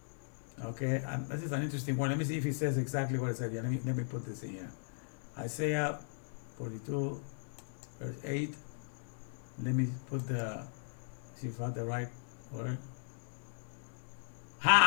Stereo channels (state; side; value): silent; right; digital silence